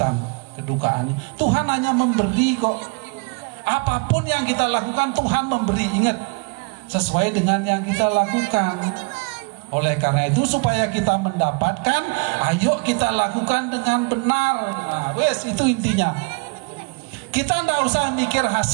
kedukaannya. Tuhan hanya memberi kok. Apapun yang kita lakukan Tuhan memberi. Ingat, sesuai dengan yang kita lakukan. Oleh karena itu supaya kita mendapatkan, ayo kita lakukan dengan benar. Nah, wes itu intinya. Kita tidak usah mikir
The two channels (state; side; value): quieter; left; 32.4 dB